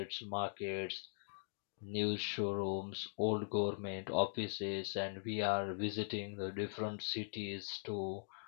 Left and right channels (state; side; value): silent; right; digital silence